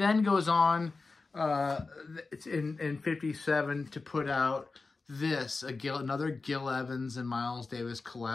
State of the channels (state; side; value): quieter; right; 3.9 dB